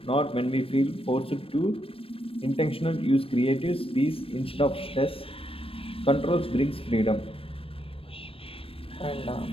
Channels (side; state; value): right; late; 0.27 ms